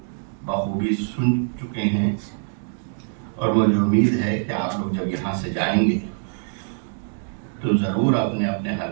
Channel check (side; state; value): left; silent; digital silence